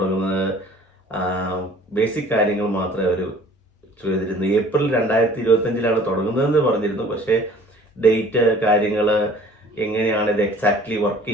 ബേസിക് കാര്യങ്ങൾ മാത്രമേ അവർ ചെയ്തിരുന്നു. ഏപ്രിൽ 2025 തുടങ്ങുന്നതെന്ന് പറഞ്ഞിരുന്നു. പക്ഷേ ഡേറ്റ്, കാര്യങ്ങൾ, എങ്ങനെയാണ് ഇത് എക്സാക്ട്ലി വർക്ക്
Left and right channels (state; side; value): normal; both; correlation 0.50